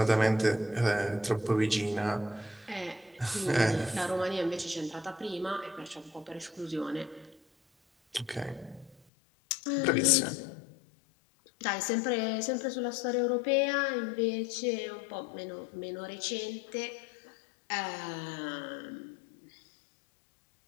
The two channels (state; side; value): drops out; right; at 9.0 s